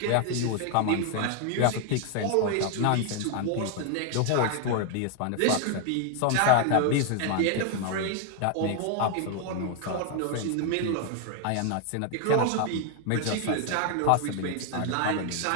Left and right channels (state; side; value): different; both; correlation 0.00